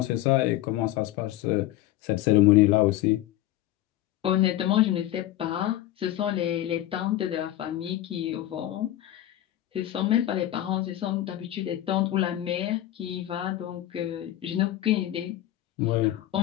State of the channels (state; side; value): quieter; right; 13.9 dB